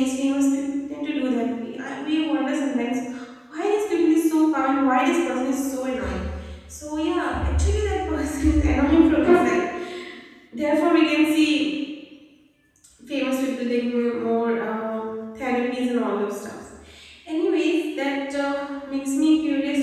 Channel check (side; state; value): both; identical; correlation 1.00